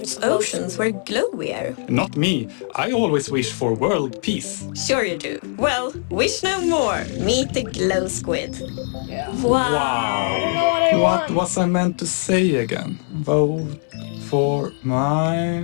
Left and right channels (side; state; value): right; silent; 65 dB below the other